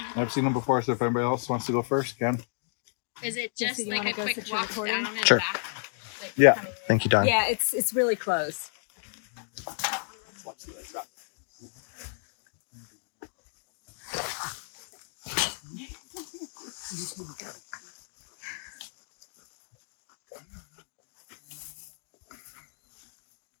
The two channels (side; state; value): right; silent; digital silence